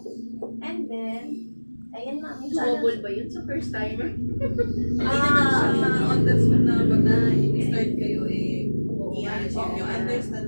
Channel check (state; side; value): inverted; both; correlation -1.00